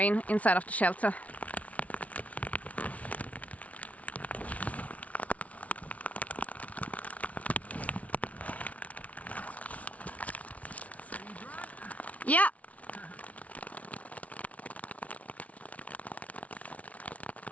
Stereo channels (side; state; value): right; late; 0.067 ms